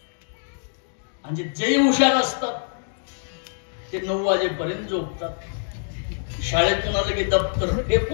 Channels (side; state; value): right; silent; digital silence